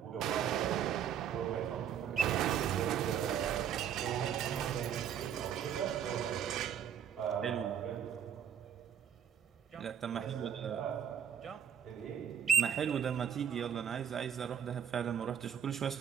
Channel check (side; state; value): left; quieter; 8.6 dB